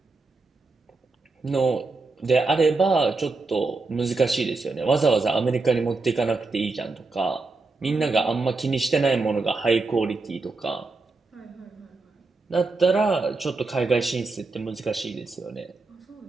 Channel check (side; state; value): left; quieter; 3.7 dB